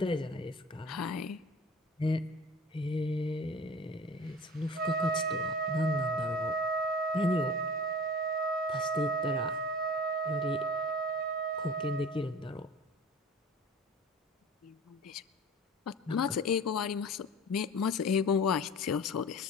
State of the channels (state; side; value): normal; both; correlation 0.39